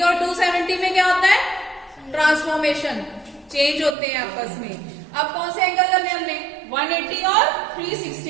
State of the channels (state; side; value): drops out; left; at 4.0 s